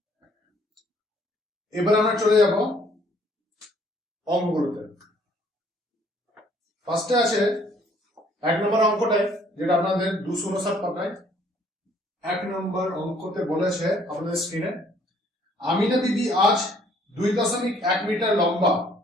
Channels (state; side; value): normal; both; correlation 0.61